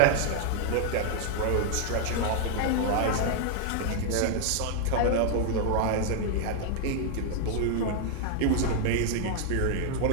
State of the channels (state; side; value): different; both; correlation 0.00